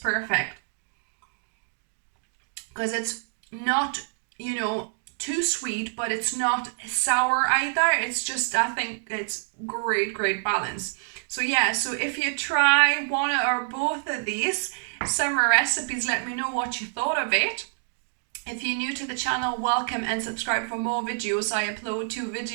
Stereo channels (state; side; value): silent; left; digital silence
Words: Because it's not, you know, too sweet, but it's not sour either. It's just, I think it's great balance. So yeah, so if you try one or both of these summer recipes, let me know what you thought of it. If you're new to the channel, welcome and subscribe for more videos. I upload 2